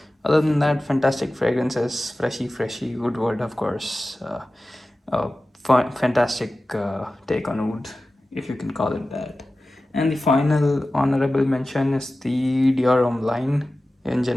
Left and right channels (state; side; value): normal; both; correlation 0.95